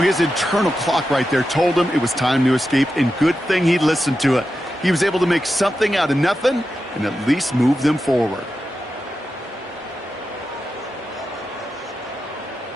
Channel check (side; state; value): both; normal; correlation 0.90